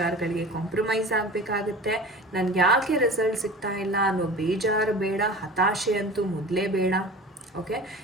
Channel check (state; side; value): normal; both; correlation 0.37